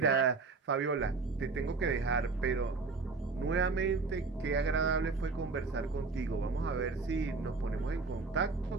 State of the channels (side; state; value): left; quieter; 4.1 dB